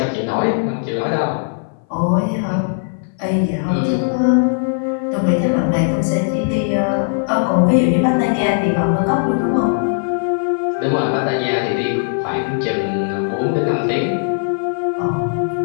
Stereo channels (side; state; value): right; silent; 59 dB below the other